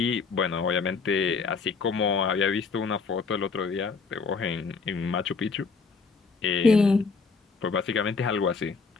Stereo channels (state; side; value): quieter; right; 4.8 dB